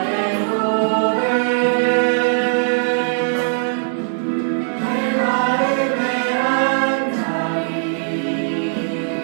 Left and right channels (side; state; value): left; silent; digital silence